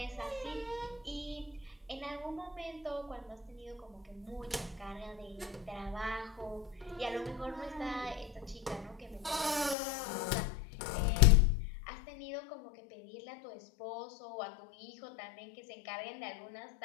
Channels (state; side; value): drops out; right; at 9.8 s